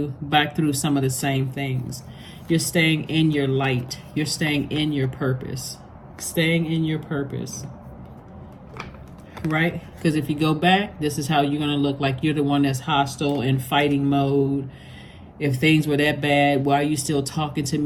some of the same things. You're staying in your light. You're staying in your purpose. Right? Because if you go back, this is how you're going to look like you're the one that's hostile in fighting mode. If things were that bad, why are you still talking to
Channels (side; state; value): both; identical; correlation 1.00